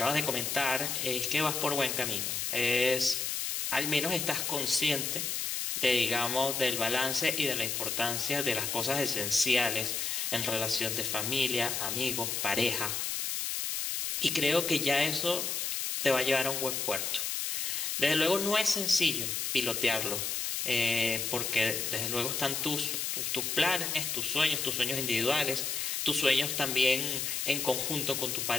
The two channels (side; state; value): left; noise; hiss, 1 dB below the sound